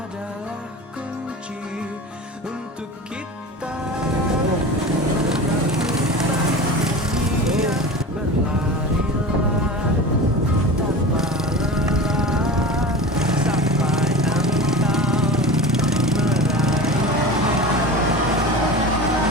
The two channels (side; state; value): both; normal; correlation 0.32